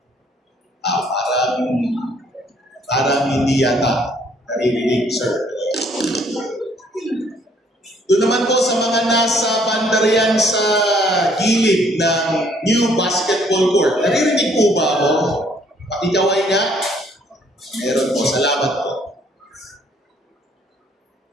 Parang hindi yata naririnig, sir. Doon naman po sa mga nasa bandarian sa gilid ng new basketball court. Naririnig po ba ako? Pakikaway nga. Meron po. Salamat po.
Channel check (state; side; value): normal; both; correlation 0.63